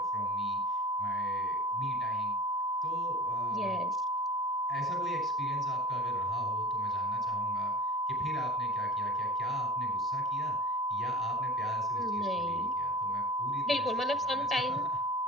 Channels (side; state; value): both; normal; correlation 0.38